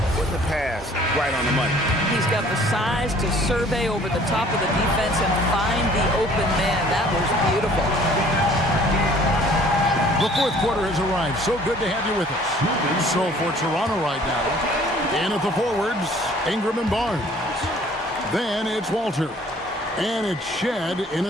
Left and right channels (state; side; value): normal; both; correlation 0.54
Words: with the pass right on the money. He's got the size to survey over the top of the defense and find the open man. That was beautiful. The fourth quarter has arrived. So good to have you with us. So for Toronto right now, and at the forwards, Ingram and Barnes. Then it's Walter. And it's Shed in